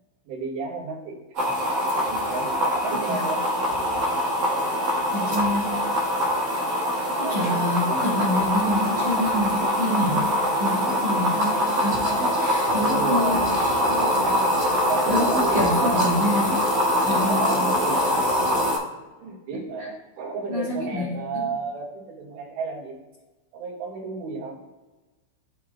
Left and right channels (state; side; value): late; left; 16 ms